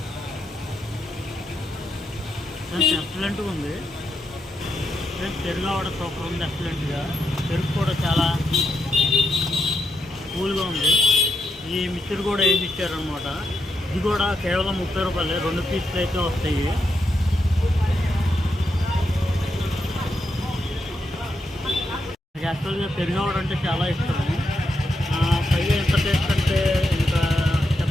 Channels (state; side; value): normal; both; correlation 0.83